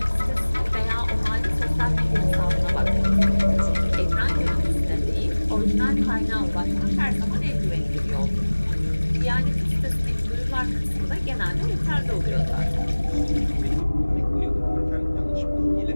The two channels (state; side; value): inverted; both; correlation -1.00